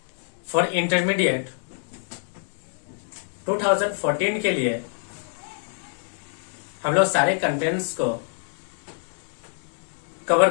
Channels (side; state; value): right; silent; 61 dB below the other